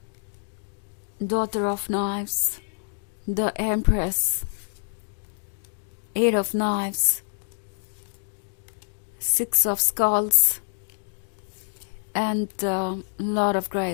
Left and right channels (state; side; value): silent; right; digital silence